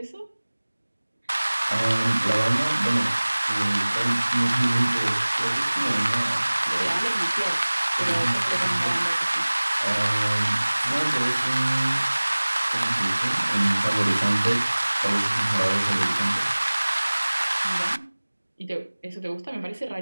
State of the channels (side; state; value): both; inverted; correlation -1.00